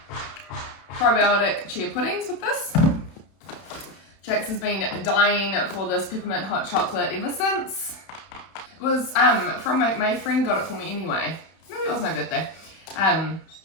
probiotic chia puddings with this. Jax has been dying for this peppermint hot chocolate ever since. It was from my friend got it for me anyway. Maybe it was my birthday.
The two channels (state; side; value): late; right; 31 ms